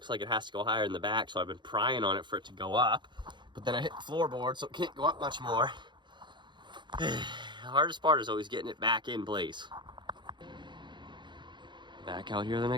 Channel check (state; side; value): late; left; 0.22 ms